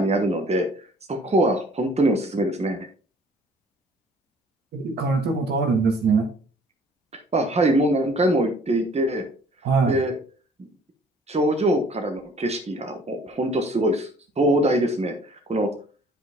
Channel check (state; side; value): normal; both; correlation 0.55